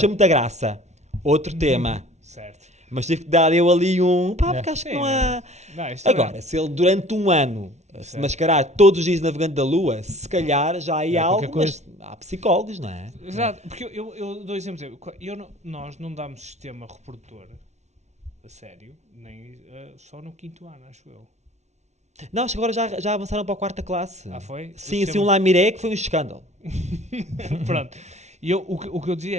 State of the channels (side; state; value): left; late; 0.32 ms